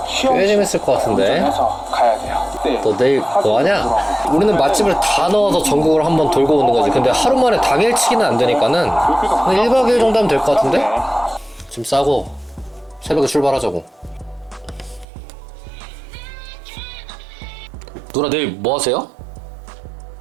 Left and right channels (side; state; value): left; drops out; at 15.1 s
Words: 꽤 재밌을 것 같은데. 운전해서 가야 돼요. 네. 너 내일 뭐 하냐? 우리는 맛집을 다 넣어서 전국을 한번 돌고 오는 거지. 근데 하루 만에 당일치기는 안 되니까는 한 1박 2일 정도 하면 될 것 같은데? 짐 싸고 새벽에 출발하자고. 누나 내일 뭐 하세요?